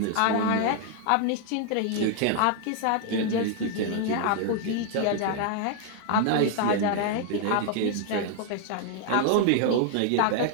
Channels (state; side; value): different; both; correlation 0.00